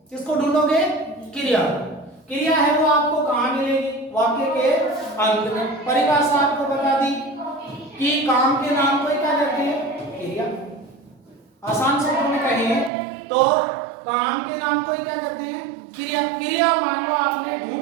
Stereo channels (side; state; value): left; drops out; at 12.9 s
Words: किसको ढूंढोगे, क्रिया। क्रिया है वो आपको कहां मिलेगी, वाक्य के अंत में। परिभाषा आपको बता दी कि काम के नाम को क्या कहते हैं, क्रिया। आसान शब्दों में कहें तो काम के नाम को क्या कहते हैं, क्रिया। क्रिया मान लो आपने